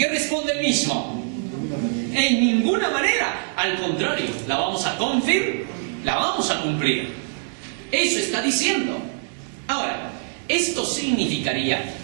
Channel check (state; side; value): silent; left; 63 dB below the other